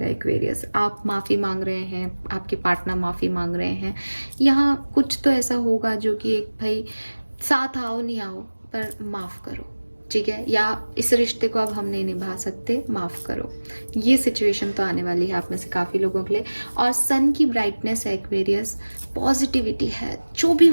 एक्वेरियस। आप माफ़ी मांग रहे हैं, आपके पार्टनर माफ़ी मांग रहे हैं, यहाँ कुछ तो ऐसा होगा जो कि एक भाई साथ आओ नहीं आओ पर माफ़ करो, ठीक है, या इस रिश्ते को अब हम नहीं निभा सकते, माफ़ करो। ये सिचुएशन तो आने वाली है आप में से काफ़ी लोगों के लिए। और सन की ब्राइटनेस है एक्वेरियस, पॉजिटिविटी है, जो भी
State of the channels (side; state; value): both; inverted; correlation -1.00